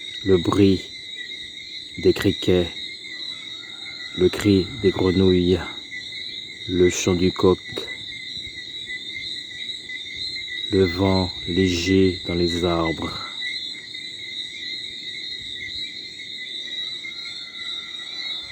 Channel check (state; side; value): identical; both; correlation 1.00